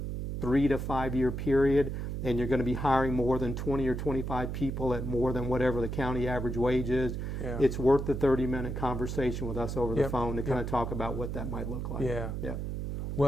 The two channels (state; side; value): noise; right; hum, 4 dB below the sound